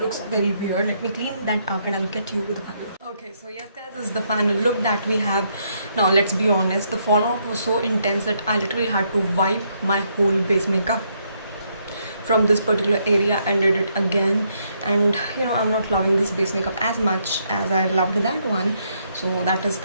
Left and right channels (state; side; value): inverted; both; correlation -0.74